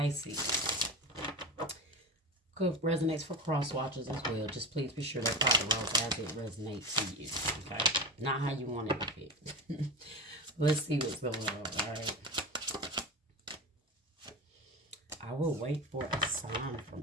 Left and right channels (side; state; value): both; normal; correlation 0.25